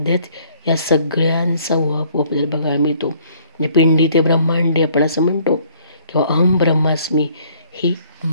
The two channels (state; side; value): inverted; both; correlation -0.61